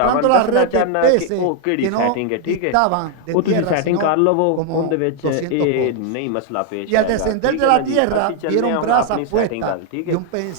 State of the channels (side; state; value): both; different; correlation 0.00